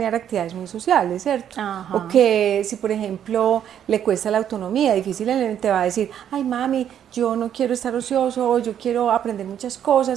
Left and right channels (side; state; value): left; quieter; 9.6 dB